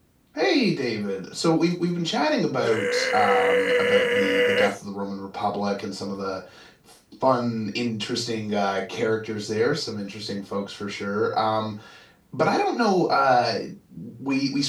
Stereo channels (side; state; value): both; identical; correlation 1.00